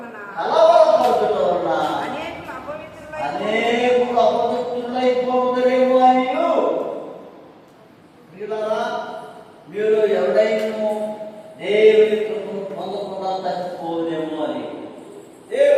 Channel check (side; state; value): both; identical; correlation 1.00